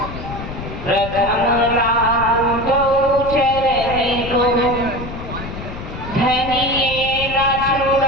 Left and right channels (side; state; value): left; noise; rumble, 10 dB below the sound